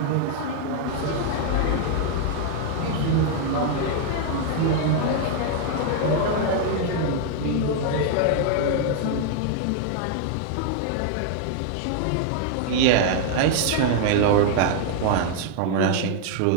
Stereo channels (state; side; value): different; both; correlation 0.00